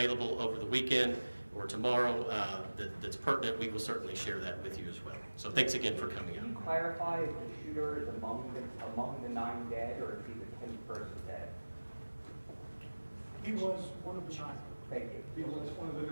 over the weekend or tomorrow that's pertinent, we will certainly share that with you as well. So thanks again for coming out. Can you clarify if the shooter is among the 9 dead, or is he the 10th person dead? He was one of the 9. Thank you. He was one of the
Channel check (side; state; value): both; inverted; correlation -1.00